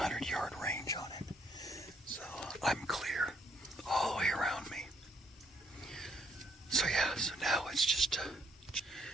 range on it. So I'm clear all the way around me. So yeah, so now it's just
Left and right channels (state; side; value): normal; both; correlation 0.70